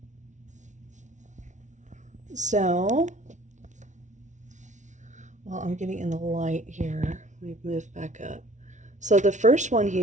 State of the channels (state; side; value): late; left; 0.36 ms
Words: So, well, I'm getting in the light here. Let me move back up. So the first one